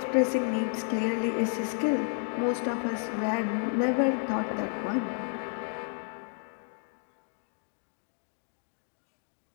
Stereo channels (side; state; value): right; silent; 57 dB below the other